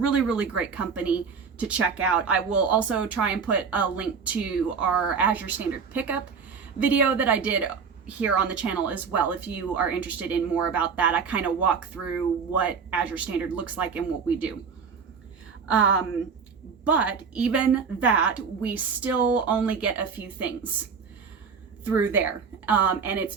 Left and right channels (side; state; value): left; quieter; 5.8 dB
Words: great company to check out. I will also try and put a link to our Azure Standard pickup video that I did here on the channel as well, if you are interested in more about that. I kind of walk through what Azure Standard looks like and what we do. But even that, we still only get a few things through there, and it's